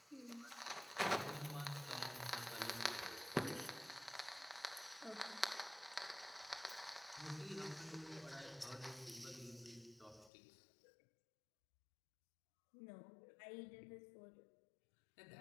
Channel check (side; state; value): right; drops out; at 10.3 s